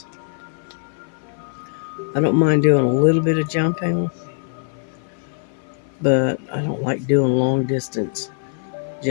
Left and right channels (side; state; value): right; silent; 56 dB below the other